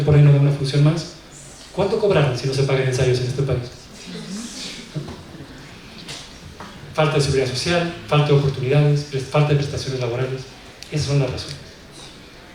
y no da una función más. ¿Cuánto cobraron si no se pagan ensayos en este país? Falta de seguridad social, falta de oportunidades, falta de prestaciones laborales. Esas son las razones.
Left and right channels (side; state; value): both; identical; correlation 1.00